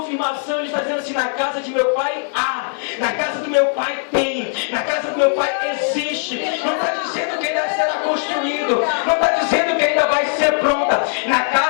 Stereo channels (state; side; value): silent; right; 59 dB below the other